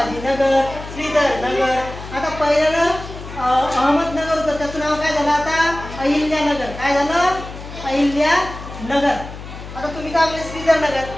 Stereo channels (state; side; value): noise; left; hum, 12 dB below the sound